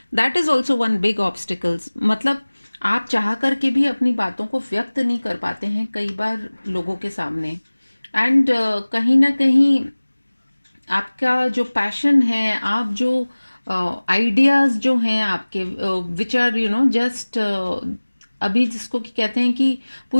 That is also one big obstacles. मतलब आप चाह करके भी अपनी बातों को व्यक्त नहीं कर पाते हैं कई बार लोगों के सामने। एंड कहीं ना कहीं आपका जो पैशन है, आप जो आइडियाज़ जो हैं आपके, which are you know just अभी जिसको कि कहते हैं कि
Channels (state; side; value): inverted; both; correlation -1.00